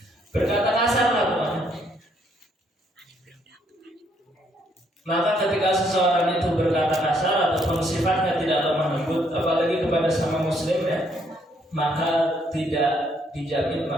Berkata kasar lah pokoknya. Maka ketika seseorang itu berkata kasar ataupun sifatnya tidak lemah lembut, apalagi kepada sama muslim ya, maka tidak dijamin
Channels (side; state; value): both; normal; correlation 0.70